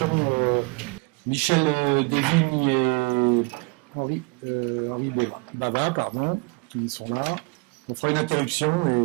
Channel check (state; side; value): quieter; left; 29.8 dB